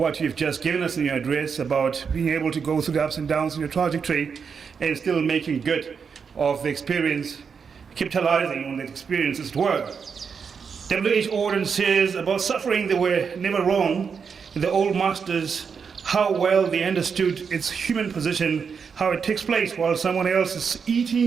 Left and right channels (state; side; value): quieter; left; 6.1 dB